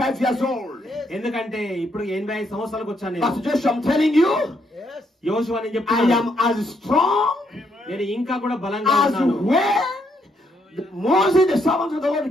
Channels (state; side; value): normal; both; correlation 0.74